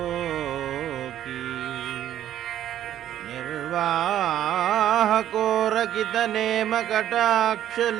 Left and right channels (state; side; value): quieter; left; 11.5 dB